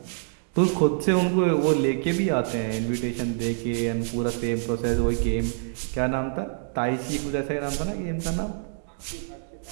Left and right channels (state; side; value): silent; left; digital silence